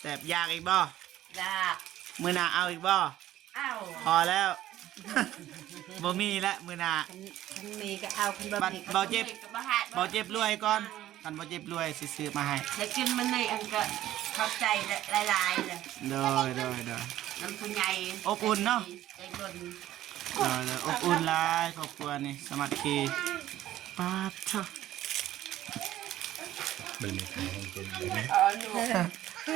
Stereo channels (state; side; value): quieter; left; 13.6 dB